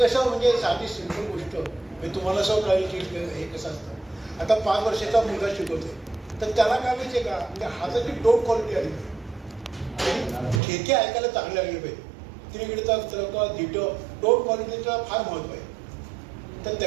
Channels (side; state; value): left; drops out; at 10.6 s